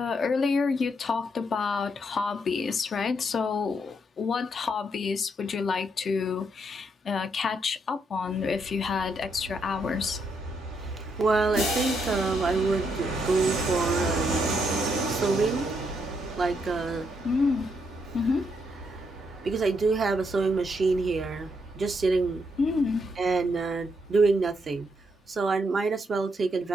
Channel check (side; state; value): both; normal; correlation 0.76